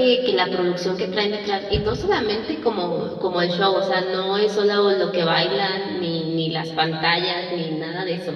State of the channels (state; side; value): identical; both; correlation 1.00